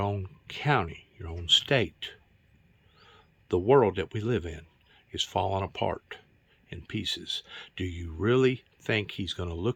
county, your own state, the world that we live in is falling apart in pieces. Do you really think he's going to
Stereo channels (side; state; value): both; identical; correlation 1.00